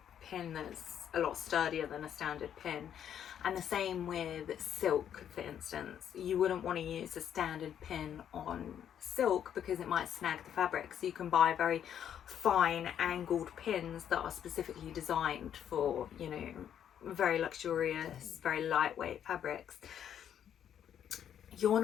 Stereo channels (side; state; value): right; quieter; 9.4 dB